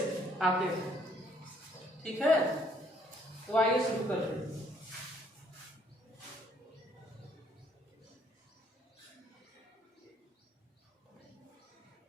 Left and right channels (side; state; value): both; normal; correlation 0.65